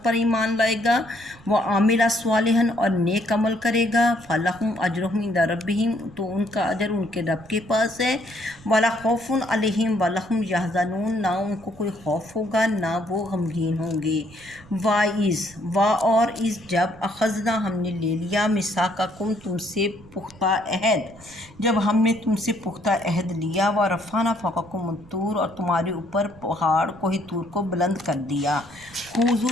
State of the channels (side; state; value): right; noise; rumble, 23 dB below the sound